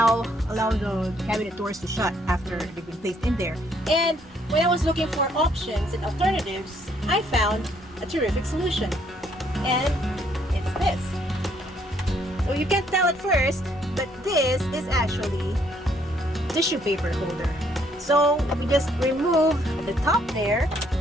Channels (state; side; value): normal; both; correlation 0.68